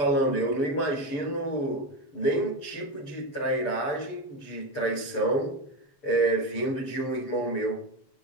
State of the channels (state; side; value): late; right; 6.9 ms